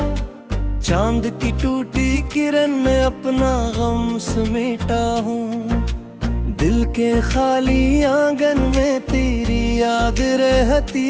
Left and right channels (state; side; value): identical; both; correlation 1.00